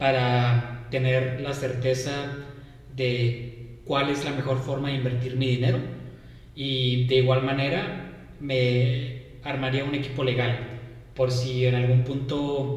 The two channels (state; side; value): identical; both; correlation 1.00